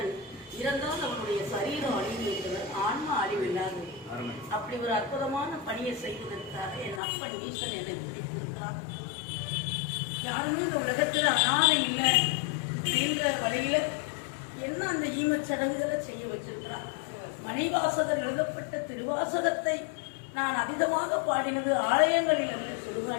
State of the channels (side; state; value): right; drops out; at 7.0 s